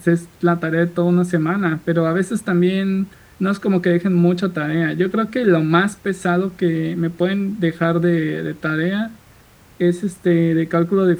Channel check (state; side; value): identical; both; correlation 1.00